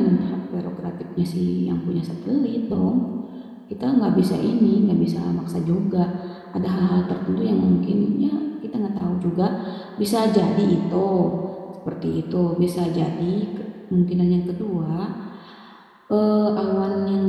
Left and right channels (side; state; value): both; identical; correlation 1.00